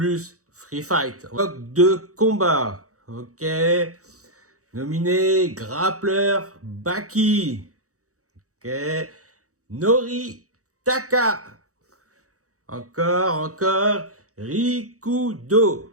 Free Fight. Bloc de combat. Ok? Nominé Grappleur Baki. Ok? Nori Taka. Encore,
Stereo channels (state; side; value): late; left; 0.65 ms